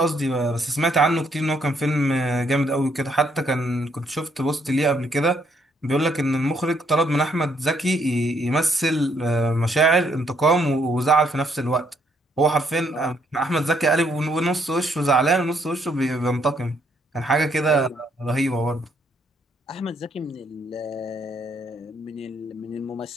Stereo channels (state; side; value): normal; both; correlation 0.71